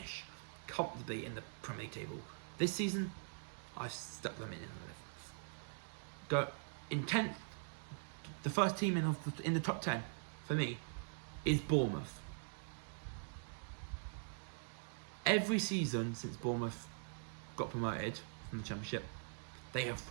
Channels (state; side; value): silent; left; digital silence